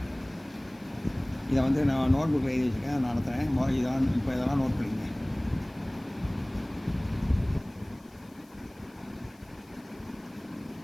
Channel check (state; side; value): noise; left; hiss, 30 dB below the sound